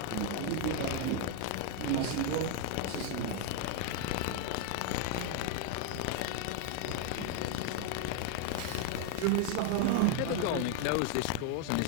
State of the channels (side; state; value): both; different; correlation 0.01